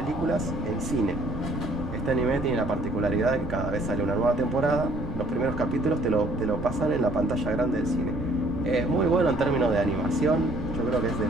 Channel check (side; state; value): right; noise; rumble, 10 dB below the sound